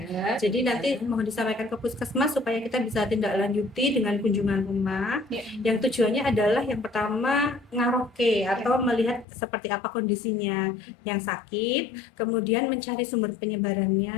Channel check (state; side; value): drops out; right; at 9.2 s